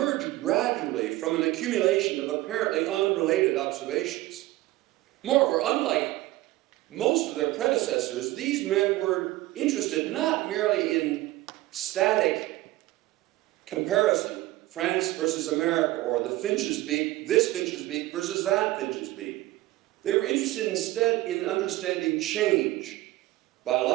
gradually from an accumulation of apparently unrelated observations. Moreover, unlike most of their predecessors, these men were interested not merely in static comparison, France versus America, or the finch's beak, this finch's beak versus that finch's beak. They were interested instead in understanding change,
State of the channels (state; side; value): quieter; left; 17.6 dB